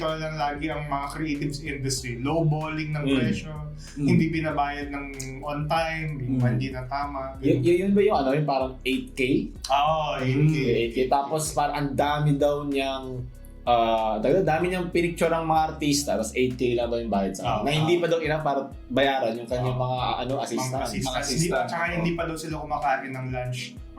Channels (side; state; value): both; identical; correlation 1.00